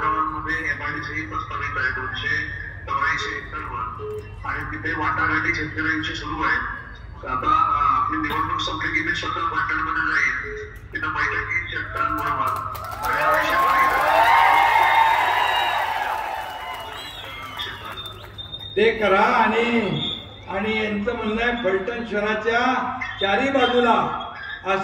गावांमध्ये MIDC प्रस्तावित आहे. 284 एकरवर आणि तिथे वाटाघाटी शेतकऱ्यांची सुरू आहे. आता आपली निवडणूक संपली की मी स्वतः पाटणमध्ये जाईल, तिथं बैठकीत शेतकऱ्यांबरोबर ते करा. आणि यांचं म्हणणं आहे फलटण शहराच्या चारी बाजूला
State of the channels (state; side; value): identical; both; correlation 1.00